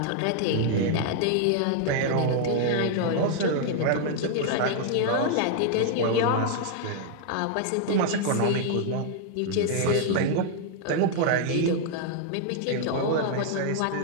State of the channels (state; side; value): different; both; correlation 0.00